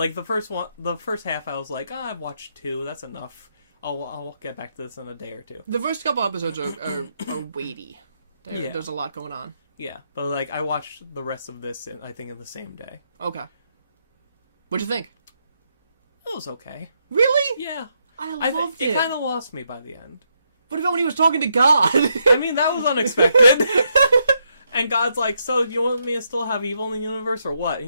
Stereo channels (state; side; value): inverted; both; correlation -0.78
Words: first half, I was like, I've watched 2. That's enough. I'll get back to this in a day or 2. The first couple episodes are weighty. There's a lot going on. Yeah, but like I watched the rest of this, I think, in the same day. Okay. What'd you think? It was okay. Really? Yeah. I loved it. It kind of lost me by the end. What about when he was talking to God? I mean, that was unexpected. And God's like, so do you want me to still have evil in the universe or what? And